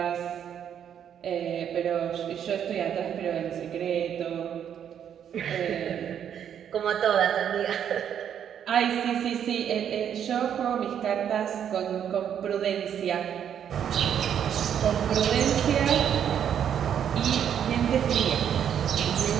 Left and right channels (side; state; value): left; quieter; 9.0 dB